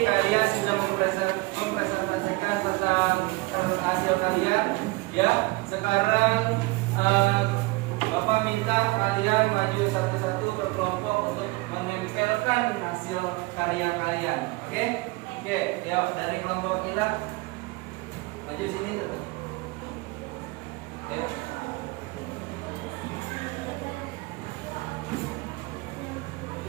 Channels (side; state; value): left; quieter; 23.4 dB